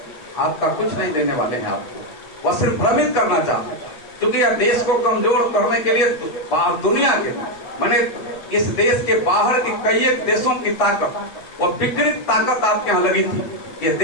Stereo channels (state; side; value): late; right; 8.5 ms